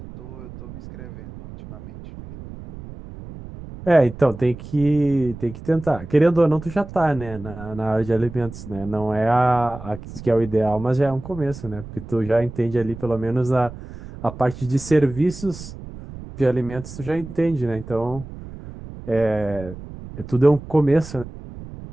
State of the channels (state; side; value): noise; right; rumble, 14 dB below the sound